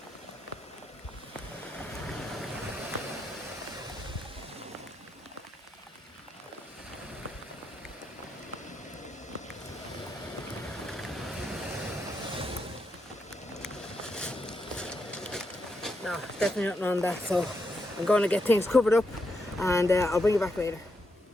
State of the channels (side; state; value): both; normal; correlation 0.82